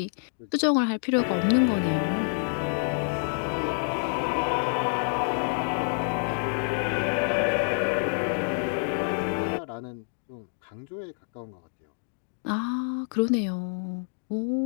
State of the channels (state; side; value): silent; right; digital silence